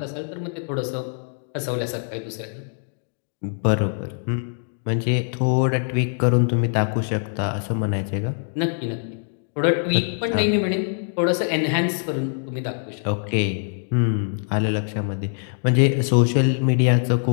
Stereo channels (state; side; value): silent; right; 63 dB below the other